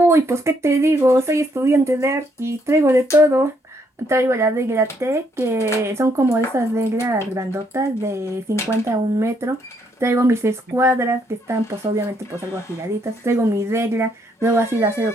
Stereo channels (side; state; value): both; normal; correlation 0.72